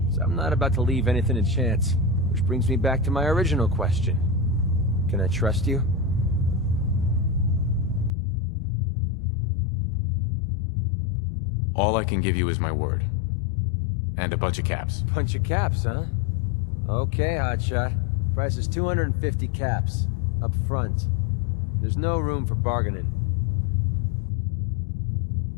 So I'm not about to leave anything to chance. Which brings me back to my original question. Can I trust you? All I can give you is my word. And a bunch of caps. Bunch of caps, huh? Okay, hotshot. Price is 250 caps. Up front. There's no room for bargaining.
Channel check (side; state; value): right; drops out; at 8.1 s